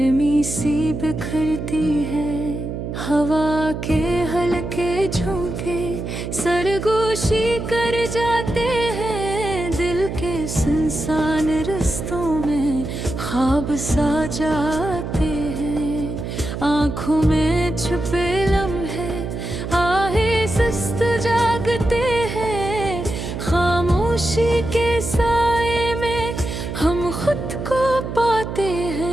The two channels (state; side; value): noise; right; hum, 6 dB below the sound